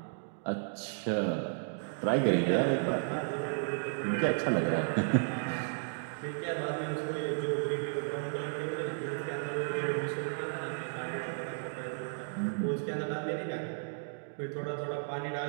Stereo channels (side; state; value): left; silent; digital silence